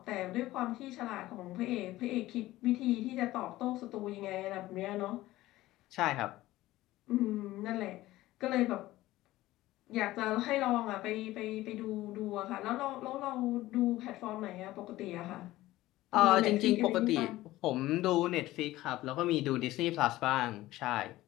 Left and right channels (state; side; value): quieter; right; 16.7 dB